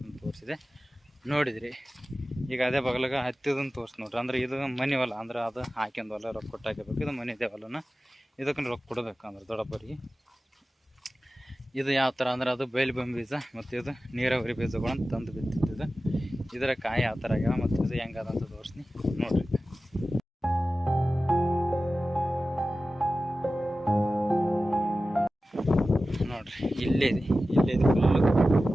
ತೋರಿಸಿದೆ ನೋಡಿದ್ರಿ. ಈಗ ಅದೇ ಬಗಲಾಗ ಹತ್ತಿದನ್ನು ತೋರಿಸಿ ನೋಡ್ರಿ. ಅಂದ್ರೆ ಇದು ಮನೆ ಹೊಲ, ಅಂದ್ರೆ ಅದು ಹಾಕ್ಯಂದು ಹೊಲ ರೊಕ್ಕ ಕೊಟ್ಟು ಹಾಕಬೇಕು. ಇದು ಮನೆ ಇದೆ ಹೊಲನ, ಇದಕ್ಕೆ ರೊಕ್ಕ ಕೊಡಬೇಕು ಅಂದ್ರೆ ದೊಡ್ಡಪ್ಪರಿಗೆ. ಇದು ಯಾವ ಥರ ಅಂದ್ರೆ ಅದು ಬೈಲ್ಬಂಬಿ ಬೀಜ, ಮತ್ತು ಇದು ನೀರಾವರಿ ಬೀಜಗಳನ್ನು ತಂದು ಬಿತ್ತಿದ್ದು. ಇದರ ಕಾಯಿ ಯಾವ ಥರ ಆಗ್ಯಾವ ಮತ್ತು ಇದು ಹೆಂಗದಂತ ತೋರಿಸ್ತೀನಿ ನೋಡ್ರಿ. ನೋಡ್ರಿ ಇಲ್ಲೇ ಫುಲ್ಲು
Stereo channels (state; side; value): normal; both; correlation 0.95